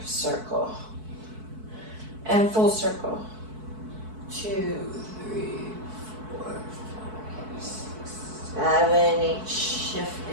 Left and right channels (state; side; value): late; left; 4.6 ms